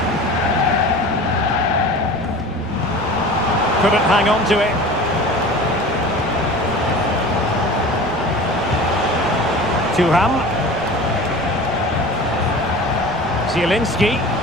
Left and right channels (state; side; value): noise; left; rumble, 18 dB below the sound